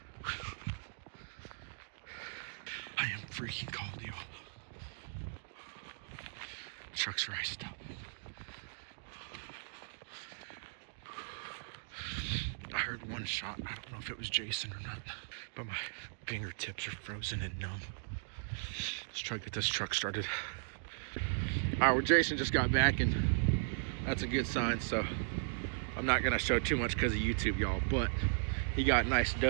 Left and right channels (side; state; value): left; silent; digital silence